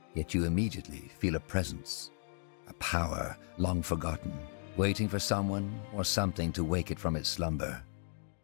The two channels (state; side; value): silent; right; digital silence